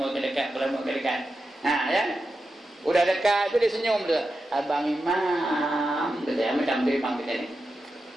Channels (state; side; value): normal; both; correlation 0.90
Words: ya. Udah dekat tu dia senyum tu. Abang Imam, kata macam tu Imam kita ni.